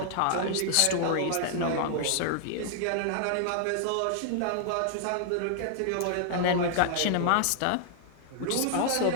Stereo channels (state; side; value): different; both; correlation -0.01